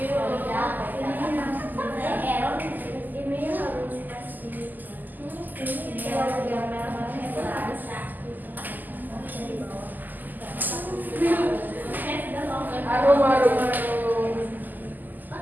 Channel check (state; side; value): late; left; 0.085 ms